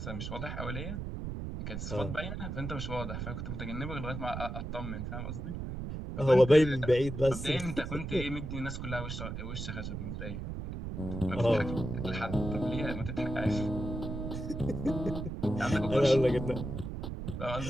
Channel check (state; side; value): noise; right; rumble, 5 dB below the sound